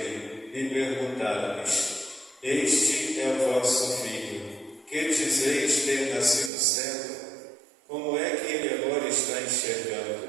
e perguntaram-lhes: este é o vosso filho, que dizeis ter nascido cego? Como é que ele agora está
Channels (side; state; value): left; drops out; at 6.5 s